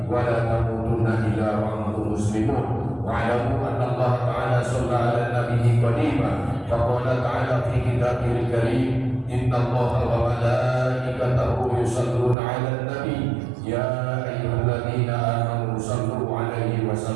wa la tamutunna illa wa antum muslimun. Wa'lamu anna Allah ta'ala shalla 'ala nabiyyi qadiman faqala ta'ala fi kitabihil karim inna Allaha wa malaikatahu yusalluna 'alan nabi ya ayyuhalladzina amanu sallu 'alaihi wa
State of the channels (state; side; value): drops out; left; at 12.4 s